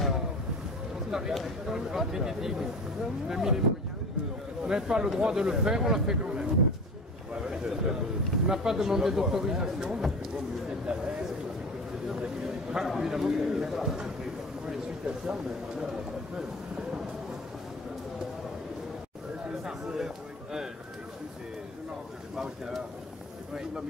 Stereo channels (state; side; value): normal; both; correlation 0.36